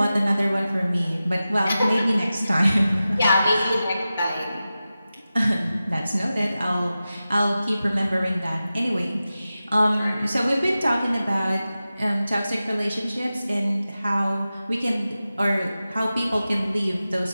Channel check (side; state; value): both; inverted; correlation -0.94